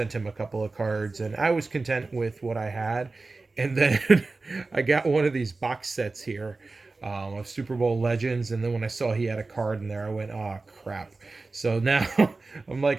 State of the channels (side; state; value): left; quieter; 3.6 dB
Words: him a couple of cards, and I was content with what I had. And then I got one of these box sets here of Super Bowl legends, and then when I saw he had a card in there, I went, "Oh crap!" So now I'm